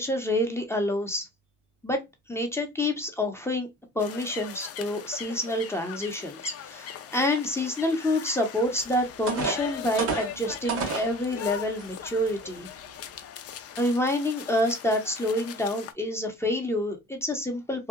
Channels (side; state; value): both; normal; correlation 0.44